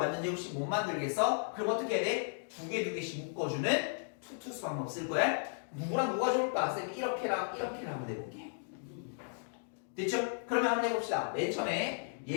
제곱식 못 만들겠어? 그럼 어떻게 해야 돼? 2개씩 묶어주는 투투수 방법 쓸 거야. 누구랑 누가 좋을까? 쌤이 이렇게랑 하면 해볼게. 됐죠? 그러면 한번 해봅시다. 맨 처음에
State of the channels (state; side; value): silent; right; digital silence